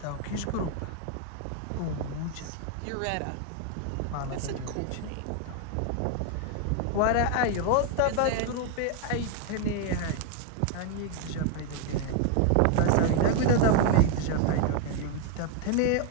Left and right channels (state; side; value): different; both; correlation 0.01